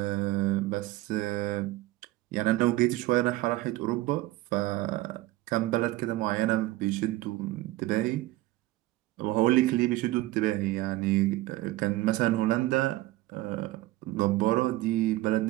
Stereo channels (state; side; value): quieter; left; 17.5 dB